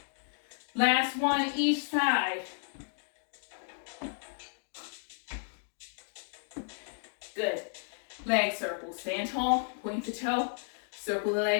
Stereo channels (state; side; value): silent; right; digital silence